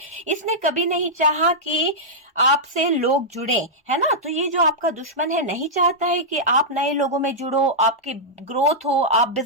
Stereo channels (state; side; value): normal; both; correlation -0.09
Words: इसने कभी नहीं चाहा कि आपसे लोग जुड़े, है ना। तो ये जो आपका दुश्मन है नहीं चाहता है कि आप नए लोगों में जुड़ो, आपकी ग्रोथ हो, आप